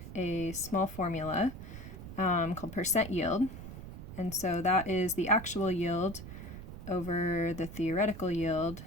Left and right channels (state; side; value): noise; right; rumble, 11 dB below the sound